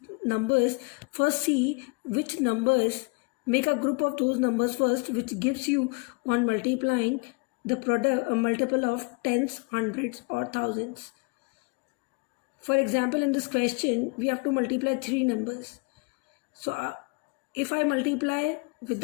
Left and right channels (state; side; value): quieter; right; 31.1 dB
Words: numbers, first see which numbers, make a group of those numbers first, which gives you on multiplying the product a multiple of tens, hundreds or thousands. For example, in this question we have to multiply 3 numbers. So if I multiply